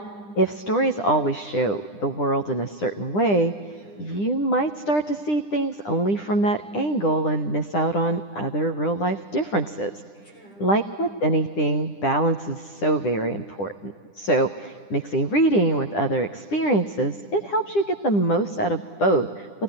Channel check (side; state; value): right; late; 10 ms